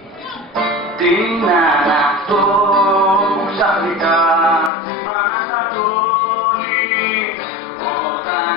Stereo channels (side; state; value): right; drops out; at 4.7 s